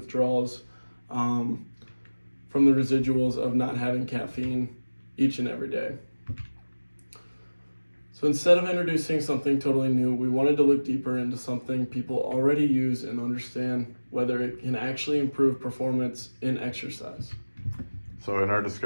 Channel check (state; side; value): inverted; both; correlation -1.00